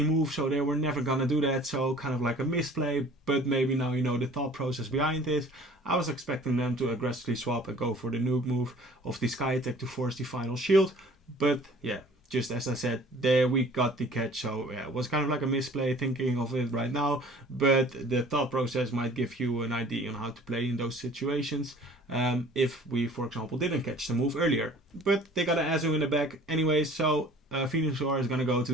move, so they were never gonna do that. So kind of like a misplay, but maybe now you know the thought process behind it. I was expecting them to aggressively swap and go for the nuke move of the Sky Attack to force the final shield, but yeah, just as I said, there we got the catch. So yeah, it was kind of like a misplay thinking of it right now, but the thought process might give you an idea on how to play in those situations, if we, for example, didn't catch the move earlier. But they got an Azu in the back anyway, so Venusaur is going to go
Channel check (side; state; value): both; normal; correlation 0.49